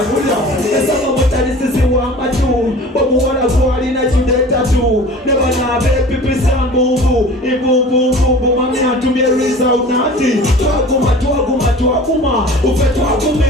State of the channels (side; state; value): both; normal; correlation 0.42